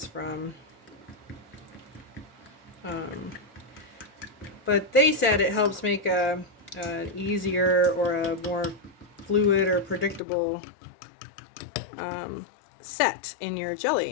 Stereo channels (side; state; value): right; drops out; at 10.2 s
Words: from. But they said it helps make an easier or a more fluid or predictable set in your